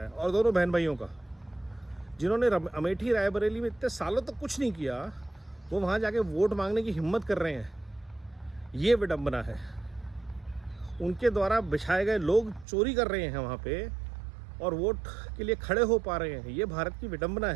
है, और दोनों बहन भाइयों का। जिन्होंने अमेठी रायबरेली में इतने सालों तक कुछ नहीं किया, वो वहाँ जाके वोट मांगने की हिम्मत कर रहे हैं। ये विडंबना है। उनके द्वारा बिछाए गए लोग चोरी कर रहे हैं वहाँ पे और वोट के लिए खड़े हो पा रहे हैं। ये भारत की विडंबना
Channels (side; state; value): left; drops out; at 12.7 s